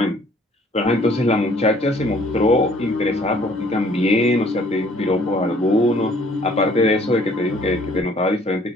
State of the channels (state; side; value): normal; both; correlation 0.58